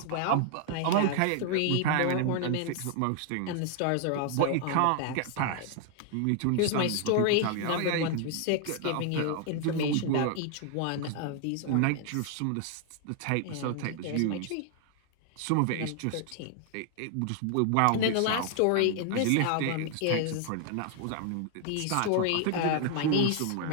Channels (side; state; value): both; different; correlation 0.00